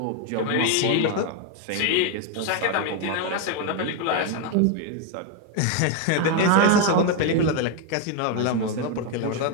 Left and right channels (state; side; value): different; both; correlation 0.01